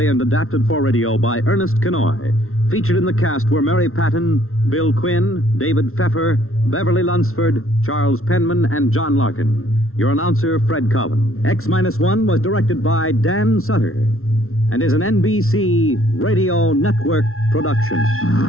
and adapted for radio by Ernest Kenoy. Featured in the cast were Mary Patton, Bill Quinn, David Pfeffer, Beverly Lunsford, Charles Penman, and John Larkin. Your announcer, Fred Collin. X-1 was directed by Dan Sutter and is an NBC Radio Network production.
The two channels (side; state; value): right; late; 0.62 ms